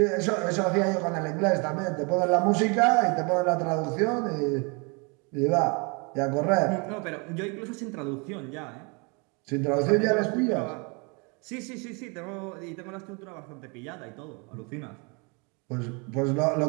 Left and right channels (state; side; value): quieter; left; 31.5 dB